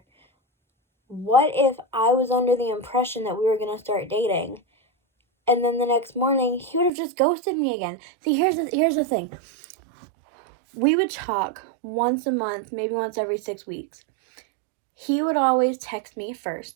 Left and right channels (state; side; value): drops out; left; at 6.9 s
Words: What if I was under the impression that we were going to start dating? And then the next morning, he would have just ghosted me again. See, here's the thing. We would talk once a month, maybe once every 6 weeks. He would always text me